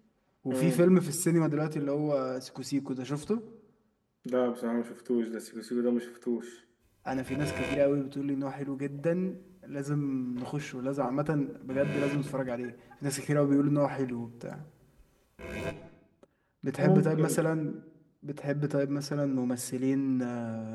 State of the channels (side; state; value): both; identical; correlation 1.00